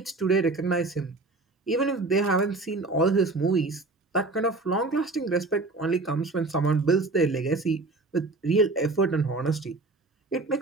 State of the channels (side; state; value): left; quieter; 3.3 dB